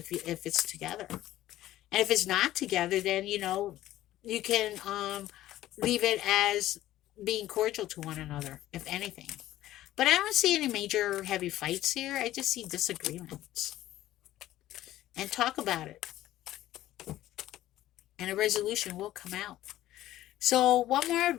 it's together. And if it's not together, then, you can leave it as being cordial to one another, if anything. But I don't see any major heavy fights here. I just see disagreements. And talk about it. And a resolution will come out. So one more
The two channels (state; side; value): quieter; right; 14.4 dB